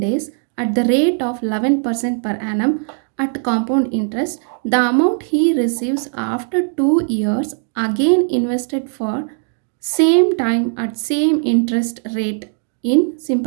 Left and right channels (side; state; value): left; silent; 57 dB below the other